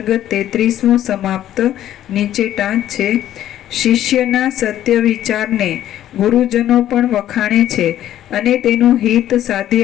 33મો સમાપ્ત નીચે ટાંચ છે. શિષ્યના સત્ય વિચારને ગુરુજનો પણ વખાણે છે અને તેનું હિત સાધી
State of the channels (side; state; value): right; quieter; 12.1 dB